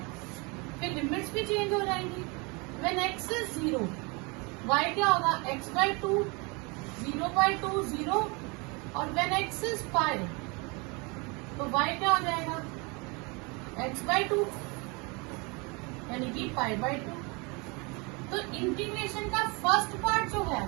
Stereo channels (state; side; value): quieter; left; 29.0 dB